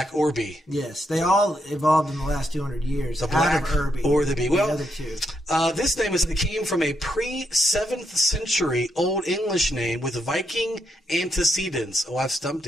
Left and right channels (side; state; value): both; normal; correlation 0.80